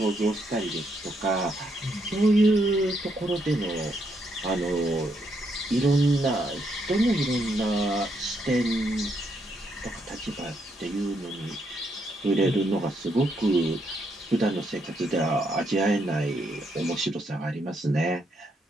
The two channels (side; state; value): both; normal; correlation 0.77